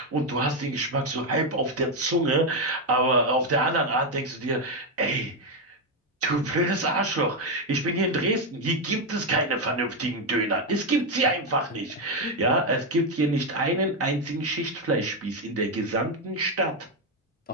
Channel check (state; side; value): normal; both; correlation 0.05